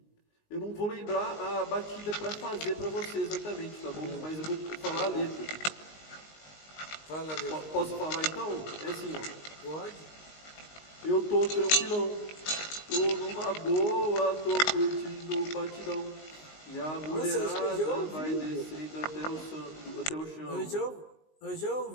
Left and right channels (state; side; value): late; right; 19 ms